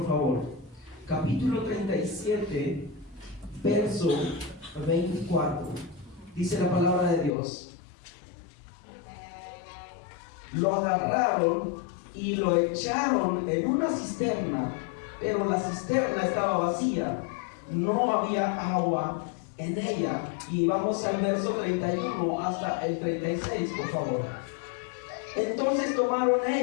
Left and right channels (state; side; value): drops out; right; at 7.4 s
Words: favor, capítulo 37, verso 24, dice la palabra de Dios: lo agarraron y lo echaron en una cisterna, pero la cisterna estaba vacía, no había agua en ella. Y vamos al verso 31 hasta el 36, por favor. Entonces tomaron